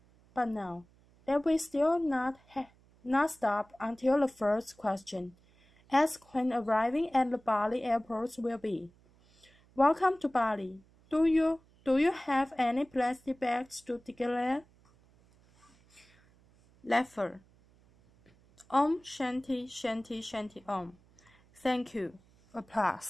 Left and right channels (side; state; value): right; noise; hum, 30 dB below the sound